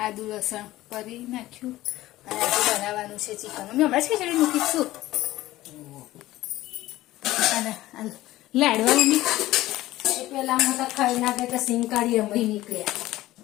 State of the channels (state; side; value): quieter; right; 16.4 dB